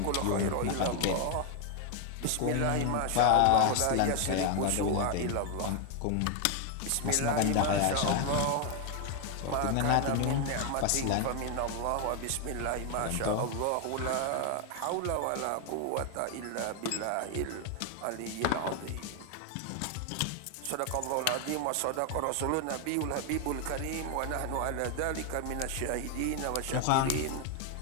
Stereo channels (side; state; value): both; different; correlation 0.01